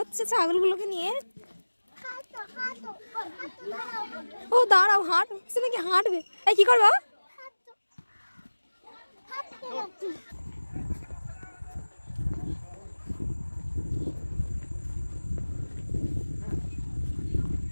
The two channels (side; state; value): both; inverted; correlation -1.00